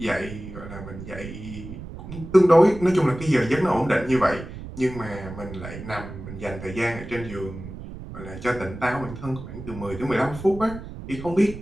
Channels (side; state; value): right; noise; rumble, 12 dB below the sound